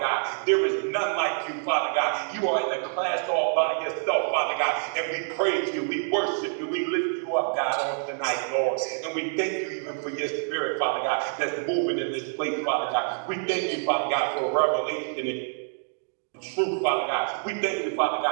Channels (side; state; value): left; silent; 60 dB below the other